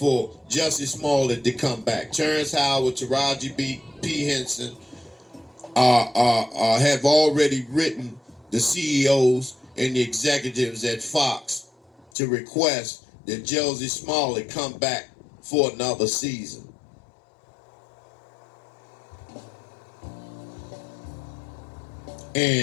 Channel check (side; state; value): right; drops out; at 12.1 s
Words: Jussie Smollett to come back. Terrence Howard, Taraji P. Henson have already written the CEOs and the executives at Fox to request that Jussie Smollett come back for another season.